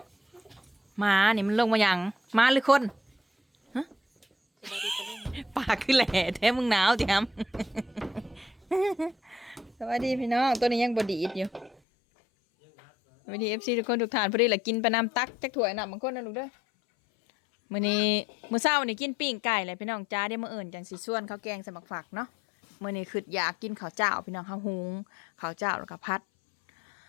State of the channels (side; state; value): right; drops out; at 11.8 s